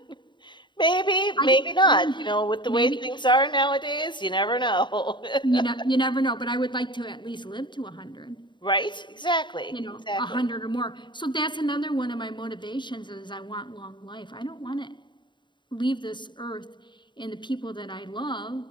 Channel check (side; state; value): right; late; 0.23 ms